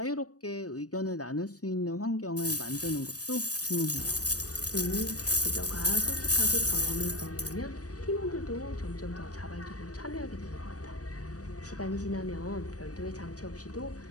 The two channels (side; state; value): right; late; 0.67 ms